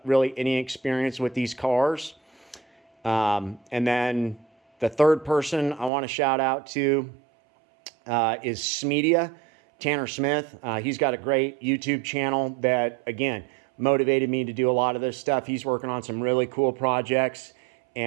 really any experience with these cars. And then the third person I want to shout out to is Smedia, Tanner Smith. He's got a great YouTube channel that, again, motivated me to do a lot of this stuff. He's working on some really cool projects,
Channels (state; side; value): drops out; left; at 5.9 s